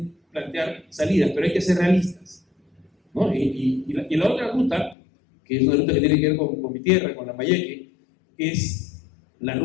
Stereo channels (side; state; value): right; drops out; at 5.0 s